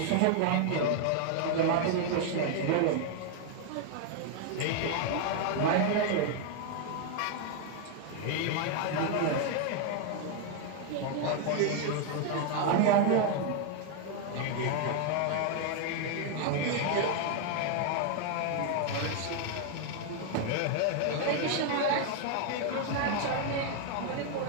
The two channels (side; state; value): both; different; correlation 0.00